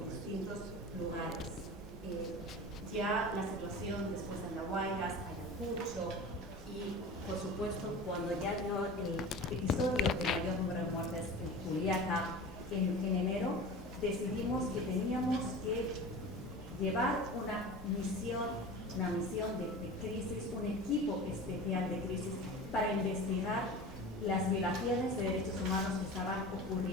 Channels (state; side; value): normal; both; correlation 0.34